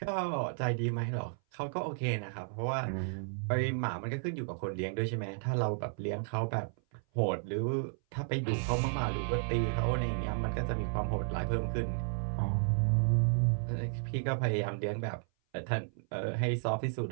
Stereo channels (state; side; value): silent; left; 56 dB below the other